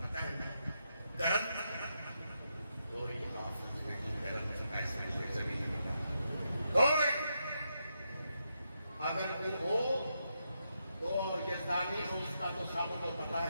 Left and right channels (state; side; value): inverted; both; correlation -0.83